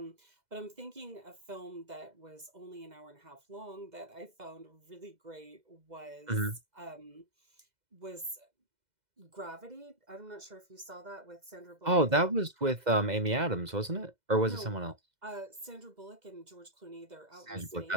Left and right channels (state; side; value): late; left; 2.0 ms